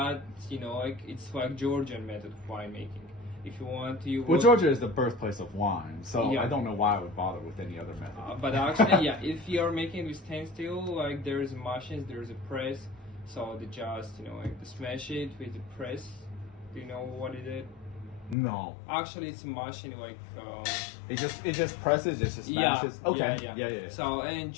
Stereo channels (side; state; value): right; drops out; at 18.4 s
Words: like it's like Georgian method of winemaking. If you want to, Well, Georgia is the birthplace of wine, so Yeah. I don't know why I would bother with any other method. But actually, yeah, if you're making with stainless steel, like there's machines, there's a press, so they just like they smash it with the press. Do you know what it is? No, Actually, it's a machine like. it just presses, it just smashes. Okay. Yeah. So and